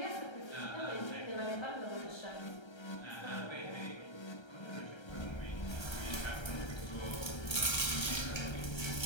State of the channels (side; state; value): right; late; 1.3 ms